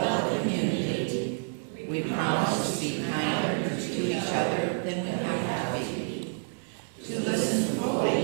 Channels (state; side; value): silent; left; 59 dB below the other